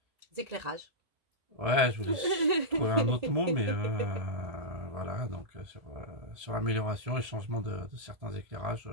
Éclairages. Ouais, je voulais trouver un autre mot, mais voilà, donc sur l'amélioration et changement de certains éclairages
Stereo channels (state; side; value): late; left; 1.7 ms